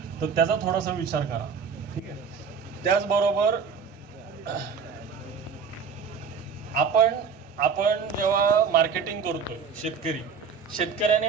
तर त्याचा थोडासा विचार करा, ठीक आहे. त्याचबरोबर आपण जेव्हा मार्केटिंग करतो,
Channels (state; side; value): quieter; left; 6.0 dB